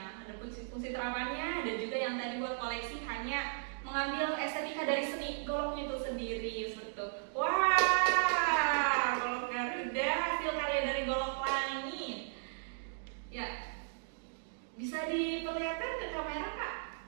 Ada fungsi terapannya, ada juga yang tadi buat koleksi hanya mengambil estetika dari seni goloknya itu sendiri seperti itu. Wah, golok Garuda hasil karya dari golok langit. Ya, bisa diperlihatkan ke kamera Kak?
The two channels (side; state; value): left; silent; digital silence